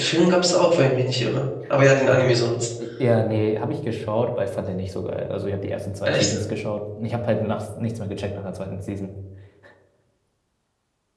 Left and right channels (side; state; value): both; identical; correlation 1.00